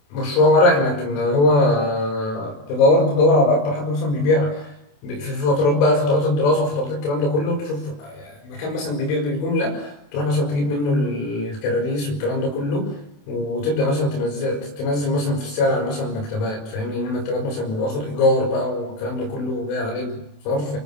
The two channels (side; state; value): right; late; 28 ms